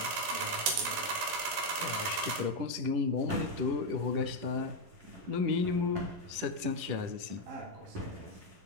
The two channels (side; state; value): left; late; 11 ms